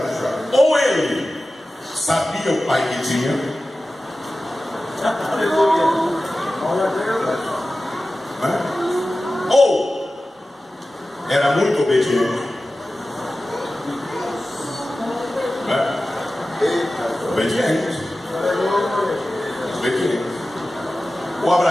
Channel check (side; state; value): both; normal; correlation 0.95